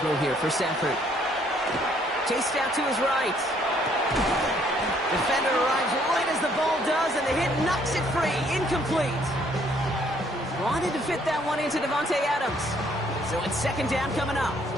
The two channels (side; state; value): both; normal; correlation 0.65